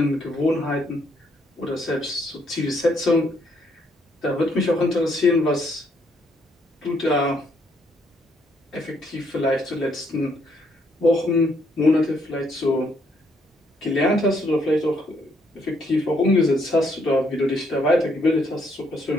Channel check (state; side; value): normal; both; correlation 0.71